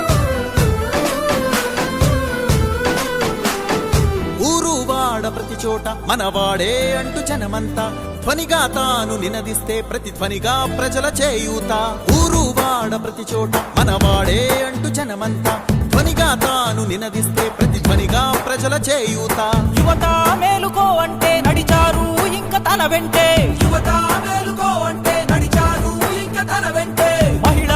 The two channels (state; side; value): identical; both; correlation 1.00